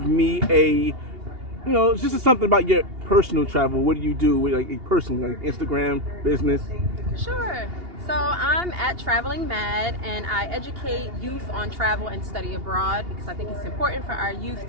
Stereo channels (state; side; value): late; left; 2.8 ms